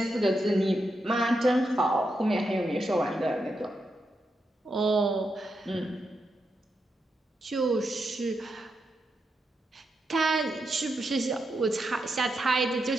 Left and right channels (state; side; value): normal; both; correlation 0.85